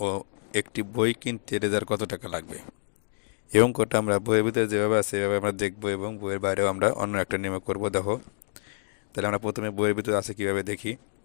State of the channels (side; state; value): right; silent; digital silence